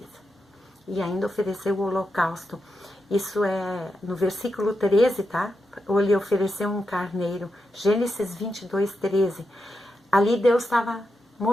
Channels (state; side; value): normal; both; correlation 0.87